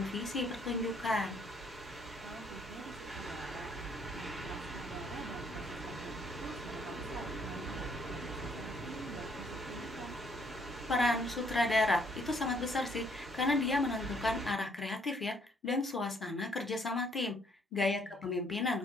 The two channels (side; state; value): both; normal; correlation 0.66